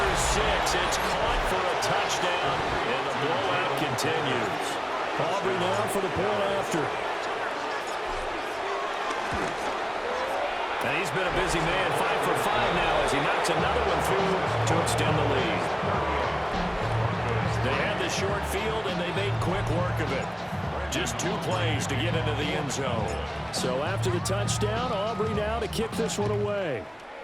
6. It's caught for a touchdown. And the blowout continues. Aubrey now for the point after. And he's been a busy man. 5 for 5 now as he knocks another one through to extend the lead. They had the short field and they made quick work of it. Just 2 plays to get into the end zone. So after the touchdown, Aubrey now to kick this one away.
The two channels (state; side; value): identical; both; correlation 1.00